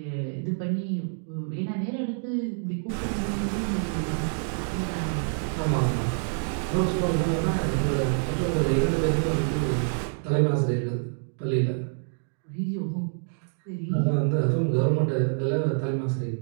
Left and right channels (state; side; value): silent; left; 60 dB below the other